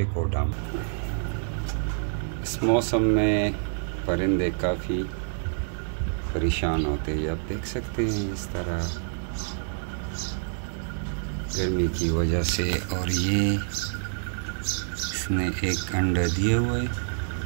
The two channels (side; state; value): left; silent; digital silence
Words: को डाल। इस मौसम में परिंदे काफ़ी परेशान होते हैं, आप देख सकते हैं इस तरह गर्मी की वजह से। और ये इसने एक अंडा दिया हुआ है,